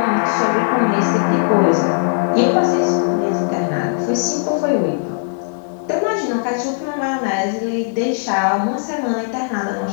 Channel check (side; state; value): right; silent; 65 dB below the other